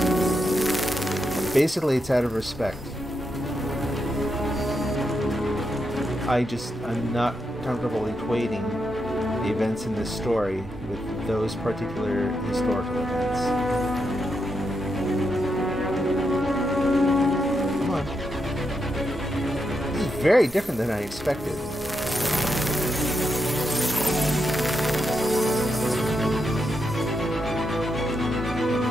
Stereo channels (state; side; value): normal; both; correlation 0.84